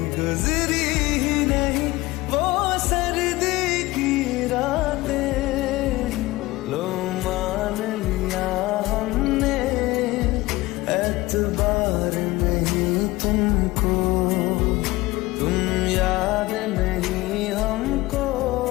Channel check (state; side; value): quieter; right; 19.7 dB